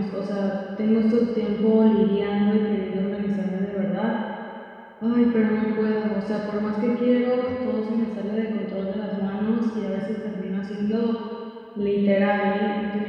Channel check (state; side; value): identical; both; correlation 1.00